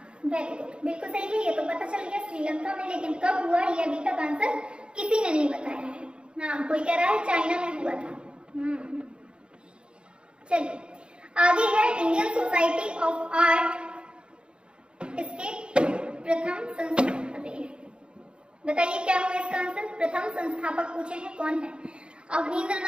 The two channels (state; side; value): late; left; 0.052 ms